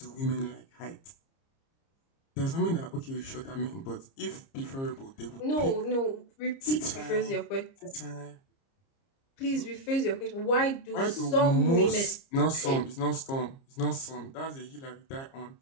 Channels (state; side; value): late; right; 30 ms